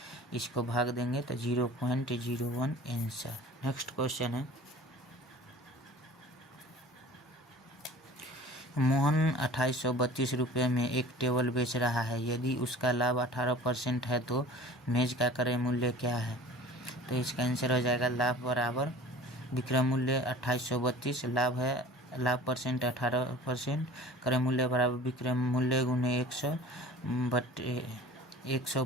इसको भाग देंगे तो 0.01 आंसर। नेक्स्ट क्वेश्चन है मोहन 2832 रुपये में एक टेबल बेच रहा है। यदि उसका लाभ 18% है तो मेज का क्रय मूल्य क्या है? तो इसका आंसर हो जाएगा लाभ बराबर विक्रय मूल्य 2832, लाभ परसेंट 18%, क्रय मूल्य बराबर विक्रय मूल्य गुने 100 बटे 100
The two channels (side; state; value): both; normal; correlation 0.43